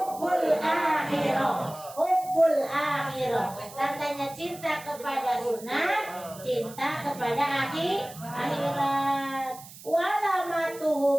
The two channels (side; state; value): right; noise; hiss, 17 dB below the sound